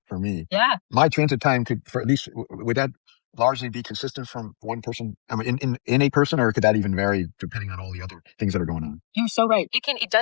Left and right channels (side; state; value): right; silent; digital silence